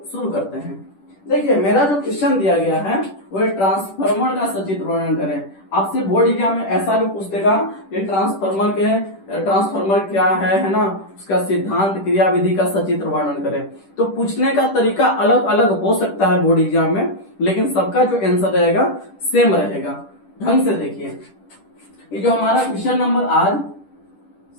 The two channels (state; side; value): late; right; 10 ms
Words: शुरू करते हैं। देखिए, मेरा जो क्वेश्चन दिया गया है वो ट्रांसफार्मर का सचित्र वर्णन करें। आपसे बोर्ड एग्जाम में ऐसा भी पूछ देगा कि ट्रांसफार्मर क्या है ना, उसका सिद्धांत, क्रिया विधि का सचित्र वर्णन करें। तो पूछने का तरीका अलग अलग हो सकता है बोर्ड एग्जाम में, लेकिन सबका जो आंसर रहेगा सेम रहेगा। ढंग से देखिए, ये जो हमारा क्वेश्चन नंबर आज